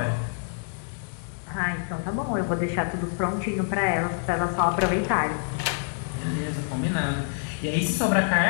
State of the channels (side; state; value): right; silent; digital silence